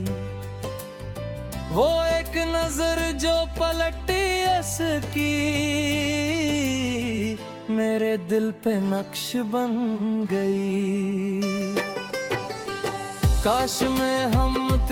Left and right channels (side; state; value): both; identical; correlation 1.00